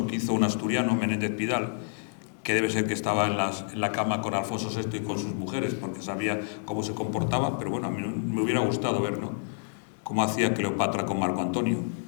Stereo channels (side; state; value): right; silent; digital silence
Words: que hizo un asturiano, Menéndez Pidal, que debe ser que estaba en la cama con Alfonso VI y con sus mujeres, porque sabía cómo se comportaba, pero bueno, a mí me hubiera gustado ver, ¿no?, cómo hacía Cleopatra con Marco Antonio.